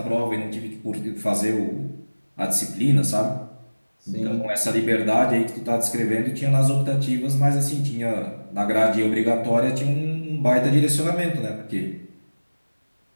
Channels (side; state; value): both; inverted; correlation -1.00